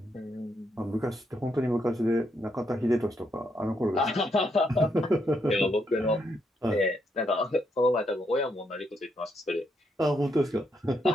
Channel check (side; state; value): both; normal; correlation 0.78